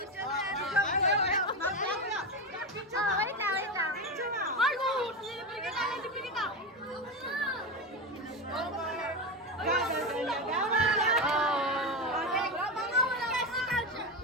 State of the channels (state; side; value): normal; both; correlation 0.15